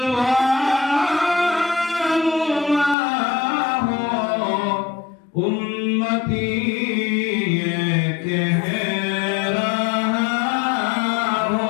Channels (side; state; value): right; drops out; at 3.0 s